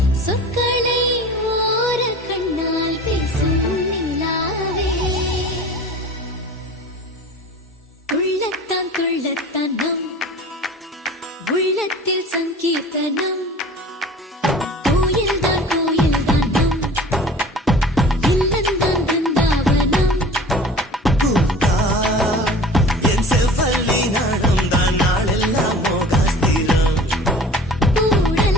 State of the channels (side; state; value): both; normal; correlation 0.42